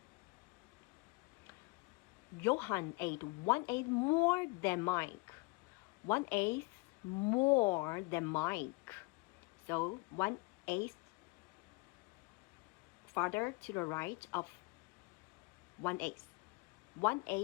Johan ate 1/8 more than Mike. 1/8 more than Mike. So 1/8 farther to the right of 1/8.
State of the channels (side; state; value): right; quieter; 26.9 dB